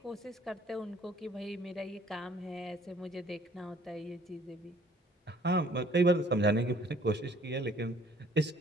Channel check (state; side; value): normal; both; correlation 0.57